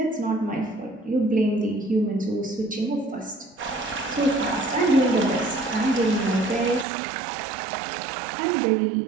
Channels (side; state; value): left; drops out; at 6.9 s